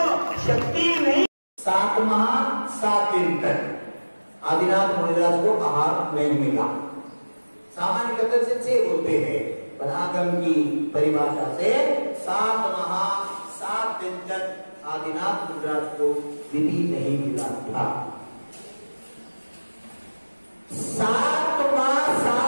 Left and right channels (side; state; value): both; inverted; correlation -1.00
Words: शक्ति नहीं, 7 माह 7 दिन तक आदिनाथ मुनिदास को आहार नहीं मिला। सामान्य कथन से 6 बोलते हैं, पर आगम की परिभाषा से 7 माह 7 दिन तक आदिनाथ मुनिदास को विधि नहीं मिला था। 7 माह